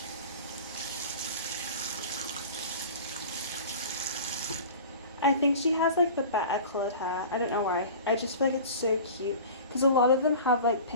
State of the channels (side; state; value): both; inverted; correlation -0.38